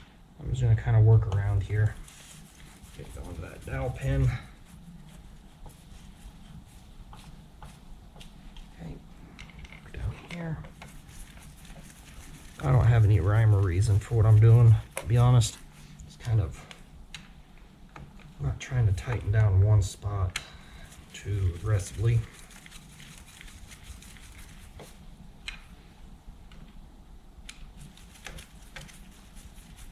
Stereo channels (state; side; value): identical; both; correlation 1.00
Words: I'm just going to kind of work around here. Get going to that dowel pin. Okay, down here. I don't have any rhyme or reason for what I'm doing, to be honest. It's kind of, I'm not trying to tighten down one spot too aggressively.